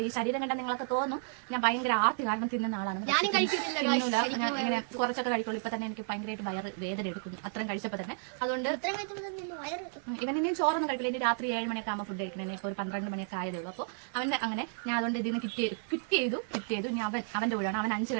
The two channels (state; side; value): silent; left; 56 dB below the other